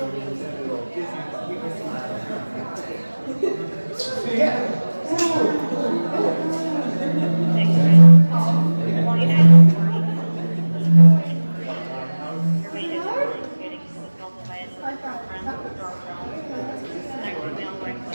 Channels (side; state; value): both; inverted; correlation -1.00